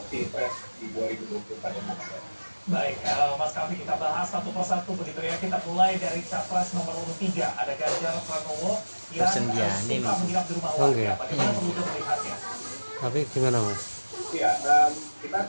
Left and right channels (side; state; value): both; inverted; correlation -1.00